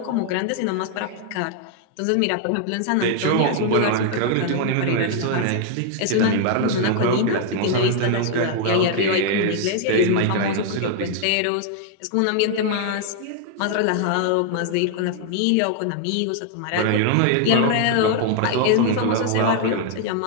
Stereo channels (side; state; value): both; different; correlation 0.00